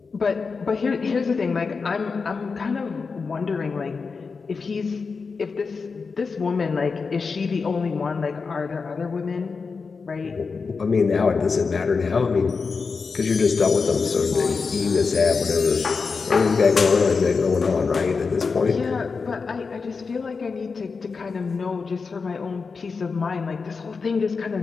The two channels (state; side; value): quieter; right; 4.9 dB